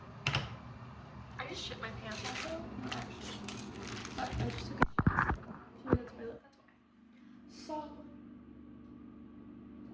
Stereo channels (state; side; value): identical; both; correlation 1.00